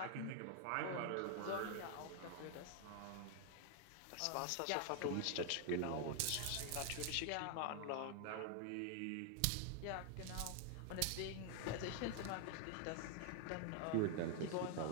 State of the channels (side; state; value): both; different; correlation 0.00